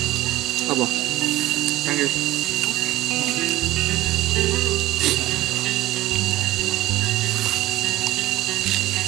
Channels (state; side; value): quieter; left; 15.8 dB